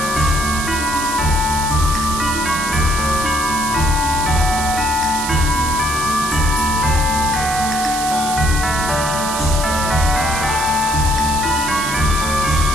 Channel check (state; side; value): noise; right; hiss, 6 dB below the sound